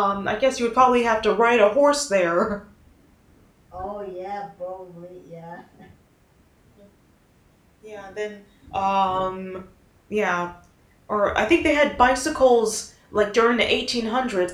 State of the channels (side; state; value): both; identical; correlation 1.00